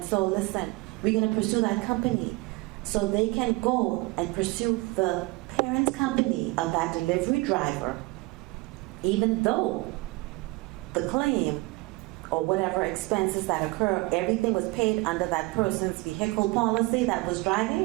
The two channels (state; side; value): quieter; left; 23.1 dB